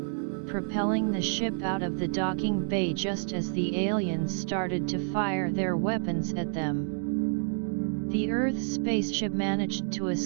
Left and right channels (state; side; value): silent; left; digital silence